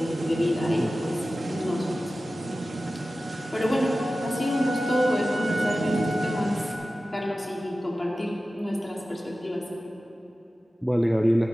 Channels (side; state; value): both; normal; correlation 0.95